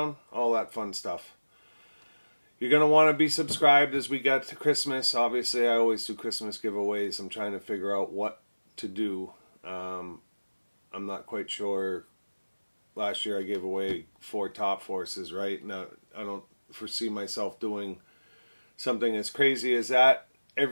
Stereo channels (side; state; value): both; inverted; correlation -1.00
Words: all that fun stuff. You're going to want to be subscribed as we get to Christmas. Obviously, I always do Christmas giveaways. I'm trying to figure out what to do. I'm not quite sure. Last year I gave away 4 Top Forces, right? Now, I don't foresee myself doing something as crazy as that